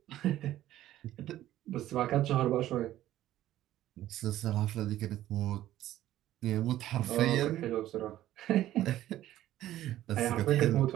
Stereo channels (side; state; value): left; quieter; 13.7 dB